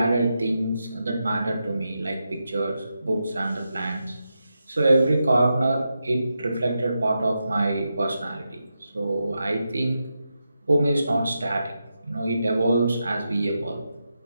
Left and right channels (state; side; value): inverted; both; correlation -0.87